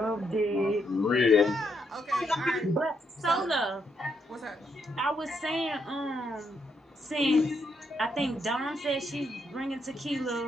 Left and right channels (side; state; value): both; normal; correlation 0.77